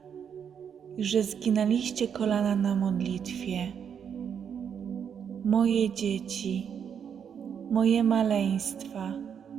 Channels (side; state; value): left; quieter; 7.8 dB